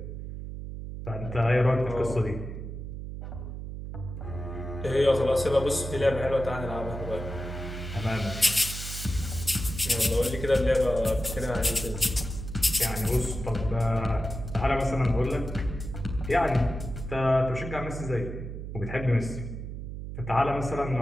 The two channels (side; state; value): right; noise; hum, 8 dB below the sound